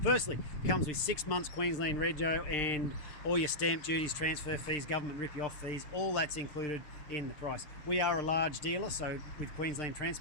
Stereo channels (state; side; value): late; right; 6.6 ms